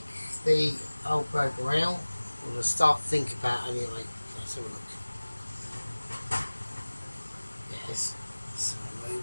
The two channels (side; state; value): both; inverted; correlation -1.00